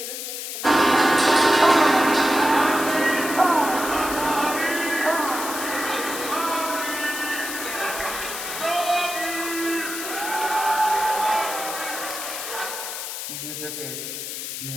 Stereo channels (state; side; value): noise; left; hiss, 6 dB below the sound